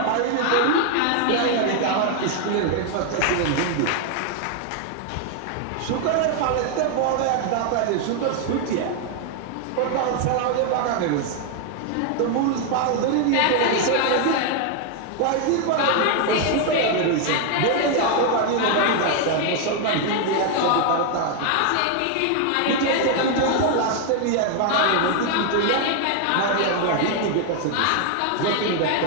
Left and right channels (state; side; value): different; both; correlation 0.00